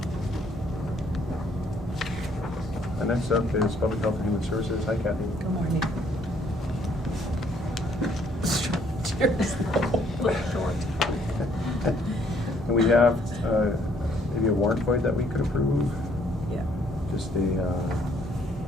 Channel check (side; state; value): both; normal; correlation 0.65